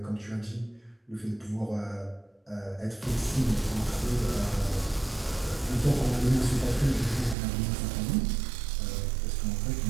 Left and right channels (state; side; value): drops out; left; at 7.4 s